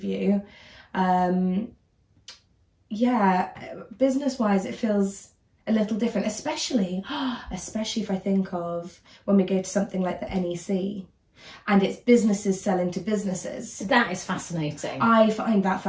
Business-wise, it feels a little different, especially if I think of when we go to something like the NEC. And it's businesses selling to businesses. That is fascinating. I find that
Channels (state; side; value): identical; both; correlation 1.00